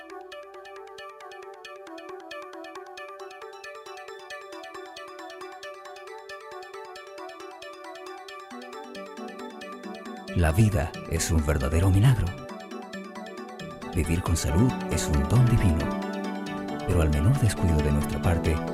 La vida es un verdadero milagro. Vivir con salud es un don divino. Pero al menor descuido de nuestra parte,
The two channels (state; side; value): identical; both; correlation 1.00